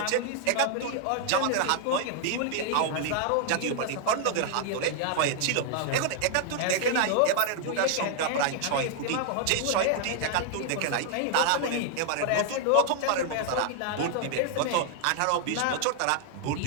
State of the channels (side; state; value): both; different; correlation 0.00